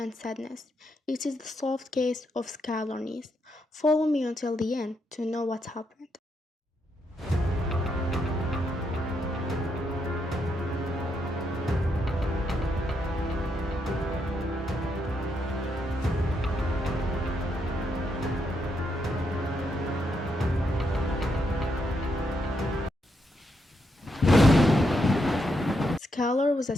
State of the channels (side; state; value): both; normal; correlation 0.79